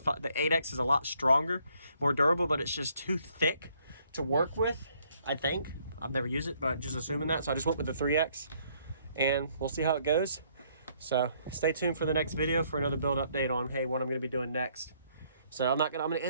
is a lot stronger, more durable, but it's just too thick to work with, I think. I've never used it, but just assuming that. So I just went with the 3X. And we'll see how it goes. So stay tuned for the next video for another build update on, hey, what I'm going to be doing next. So I'm going to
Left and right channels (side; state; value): both; inverted; correlation -0.67